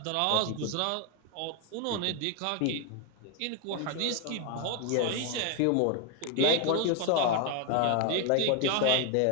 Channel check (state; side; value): different; both; correlation 0.01